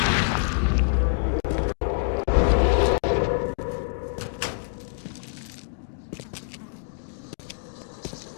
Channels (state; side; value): silent; right; digital silence